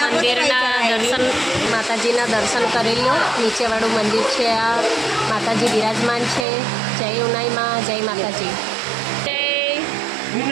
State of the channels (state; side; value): drops out; left; at 6.5 s